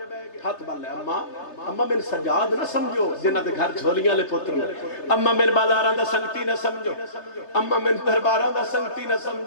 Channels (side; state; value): right; late; 3.3 ms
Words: ہاتھ بن لے اما میں سجاد نہ سمجھو جنہ دے گھر جھولیاں لے پتر نے اما میں بازاراں دا سنگتی نہ سمجھو اما میں درباراں دا سنگتی نہ